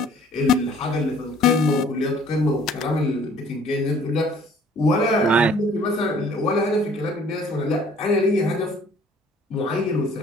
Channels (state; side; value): normal; both; correlation 0.56